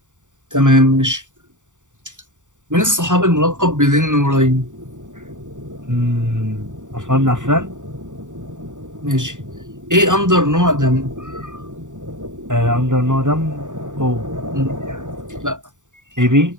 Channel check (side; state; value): left; late; 0.86 ms